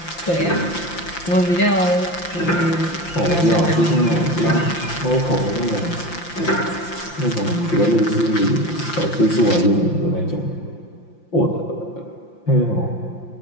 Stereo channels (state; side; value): late; right; 5.8 ms